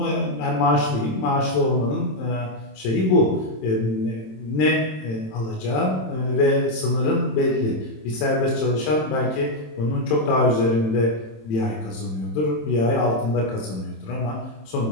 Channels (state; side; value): late; right; 27 ms